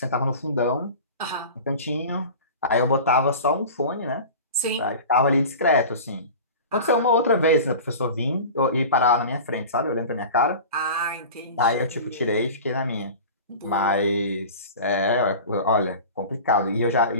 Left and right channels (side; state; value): both; inverted; correlation -0.36